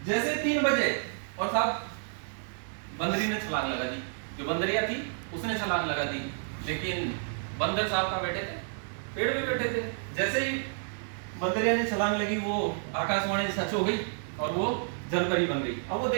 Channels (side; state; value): left; silent; digital silence